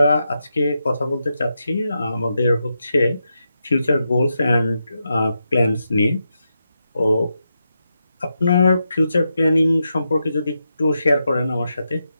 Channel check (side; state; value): both; inverted; correlation -0.86